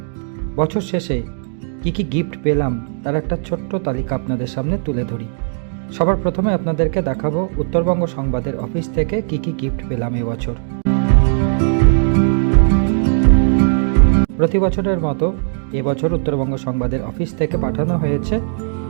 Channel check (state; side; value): silent; left; 68 dB below the other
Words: বছর শেষে কি কি গিফট পেলাম তার একটা ছোট্ট তালিকা আপনাদের সামনে তুলে ধরি। সবার প্রথমে আপনাদেরকে দেখাবো উত্তরবঙ্গ সংবাদের অফিস থেকে কি কি গিফট পেলাম এবছর। প্রতি বছরের মতো এবছর উত্তরবঙ্গ সংবাদের অফিস থেকে পাঠানো হয়েছে